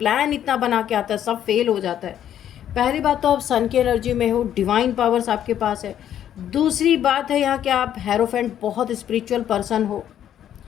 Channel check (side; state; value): right; quieter; 10.5 dB